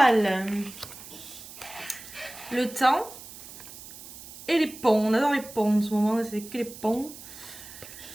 le temps et les ponts. On adore les ponts en ce moment, c'est que les ponts.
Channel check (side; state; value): right; noise; hiss, 16 dB below the sound